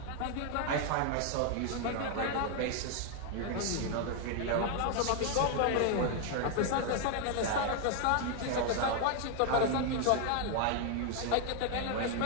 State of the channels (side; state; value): both; different; correlation 0.00